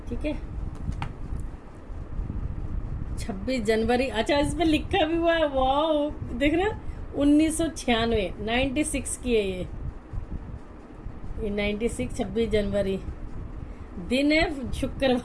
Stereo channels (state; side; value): identical; both; correlation 1.00